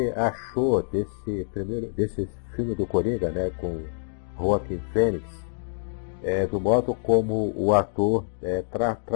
achou desse filme do Coringa, né, com Joaquin Phoenix, do modo como o ator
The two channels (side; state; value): right; silent; digital silence